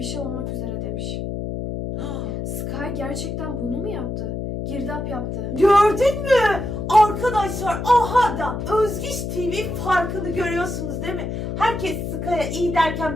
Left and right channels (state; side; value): noise; left; hum, 4 dB below the sound